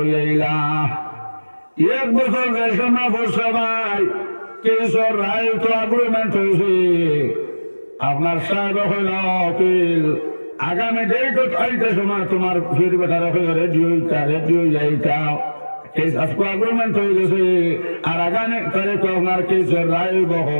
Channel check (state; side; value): inverted; both; correlation -1.00